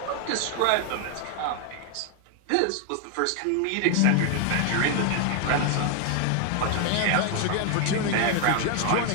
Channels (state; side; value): different; both; correlation 0.00